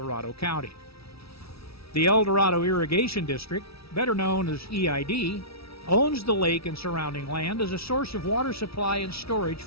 County. The El Dorado Irrigation District, better known as EID, owns the lake and surrounding land as a source of water supply and storage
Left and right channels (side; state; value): right; late; 0.76 ms